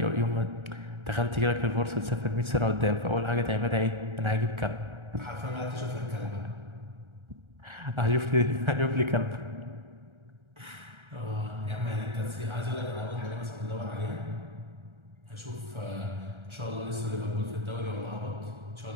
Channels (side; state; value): left; late; 1.3 ms